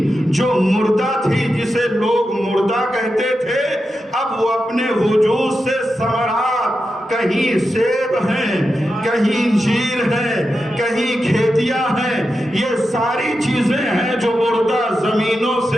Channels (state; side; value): normal; both; correlation 0.89